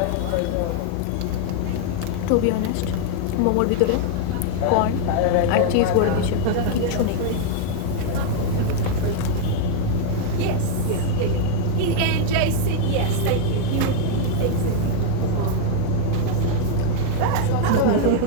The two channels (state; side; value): different; both; correlation 0.00